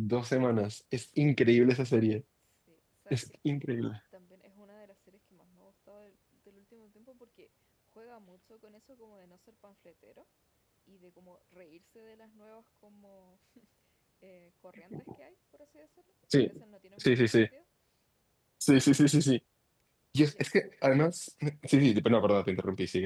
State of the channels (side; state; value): both; identical; correlation 1.00